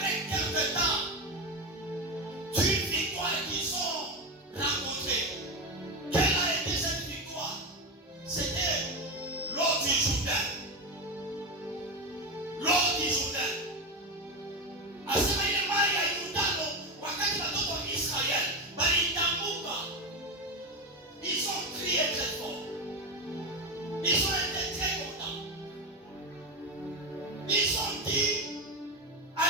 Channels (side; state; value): both; normal; correlation 0.16